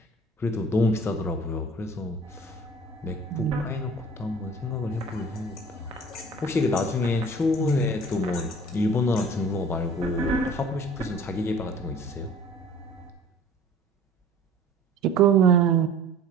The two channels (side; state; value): both; normal; correlation 0.48